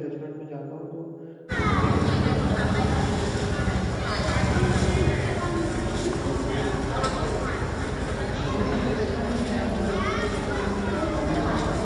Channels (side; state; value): both; identical; correlation 1.00